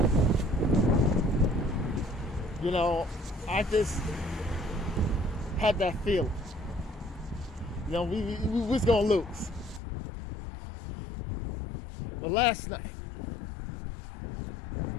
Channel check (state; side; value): drops out; right; at 9.8 s